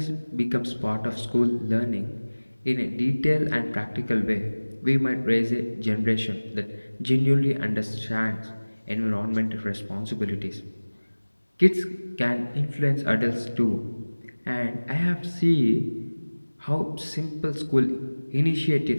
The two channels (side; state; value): both; inverted; correlation -1.00